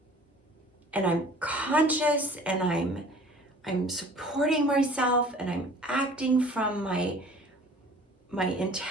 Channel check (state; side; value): normal; both; correlation 0.48